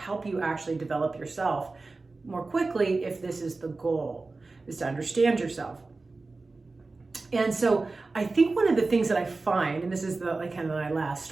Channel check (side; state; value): left; quieter; 3.6 dB